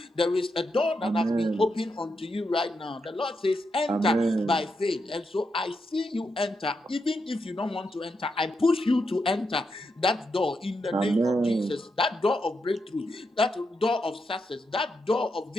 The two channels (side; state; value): both; normal; correlation 0.84